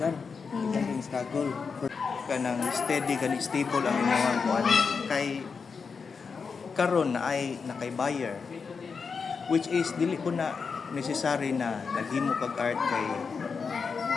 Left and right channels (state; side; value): quieter; right; 5.4 dB